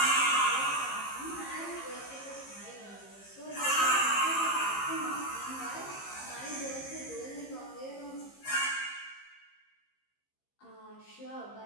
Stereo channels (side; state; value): right; late; 15 ms